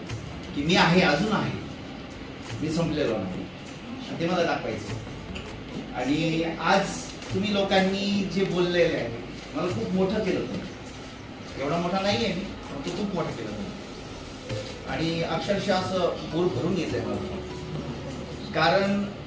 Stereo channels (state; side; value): identical; both; correlation 1.00